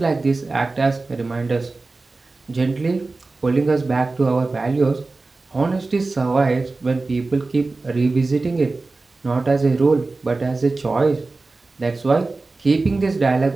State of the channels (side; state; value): left; quieter; 3.5 dB